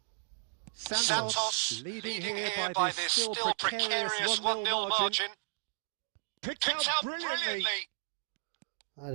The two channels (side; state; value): left; silent; digital silence